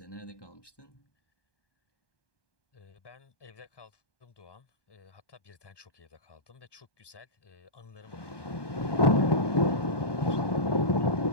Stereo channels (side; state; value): right; late; 1.2 ms